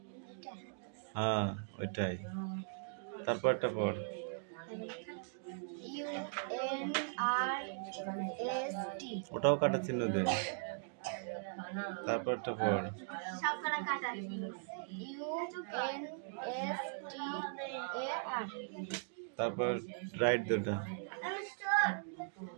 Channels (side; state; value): left; silent; digital silence